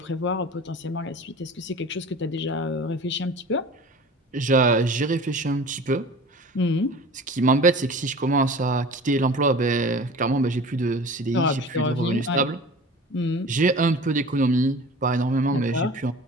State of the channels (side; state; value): both; normal; correlation 0.40